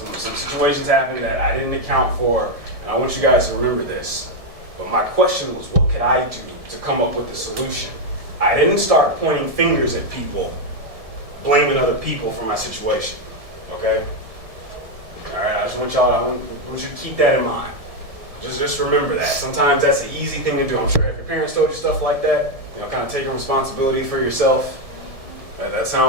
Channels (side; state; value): left; late; 1.7 ms